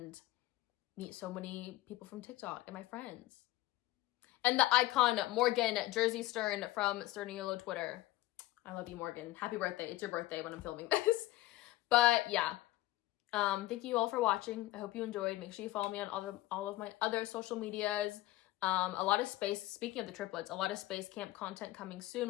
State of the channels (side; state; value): right; quieter; 17.2 dB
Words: meet so many people from TikTok and my friends. And the icon Morgan Jersey Stern from Sturniolo Twitter. I love you, Morgan. Happy birthday. It's your birthday when I'm filming this. But yeah, thank you all for watching. I hope you enjoyed. Make sure you follow me on all of my other social medias. A lot of space, speaking of the triplets, a lot of space camp content coming soon